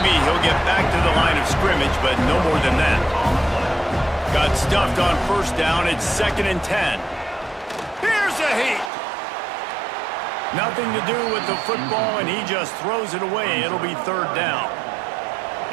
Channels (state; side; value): drops out; left; at 8.9 s